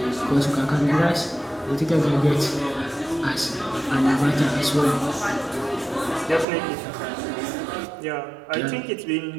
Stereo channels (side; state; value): left; drops out; at 6.5 s